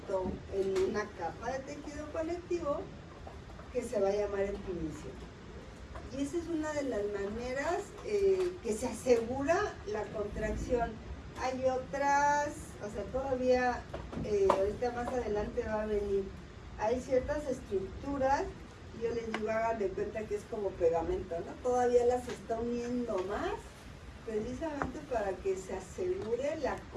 en una capa de tejido conectivo que se va a llamar epimicio. Y esa es una de las maneras que se asegura la contracción. Hay otras, o sea, todavía, ahorita más adelante va a venir, hay ciertas estructuras, yo les digo, hagan de cuenta que es como pegamento, ¿no? Todavía las está uniendo más, precisamente para que se asegure la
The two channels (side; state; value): both; identical; correlation 1.00